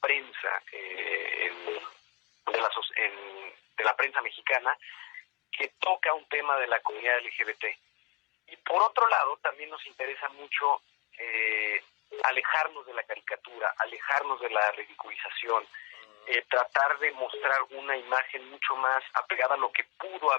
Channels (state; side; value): quieter; right; 25.1 dB